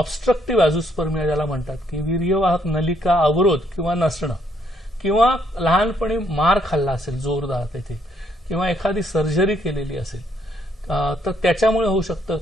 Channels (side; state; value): both; normal; correlation 0.70